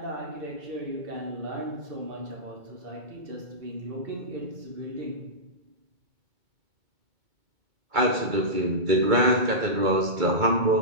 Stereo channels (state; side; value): late; left; 2.3 ms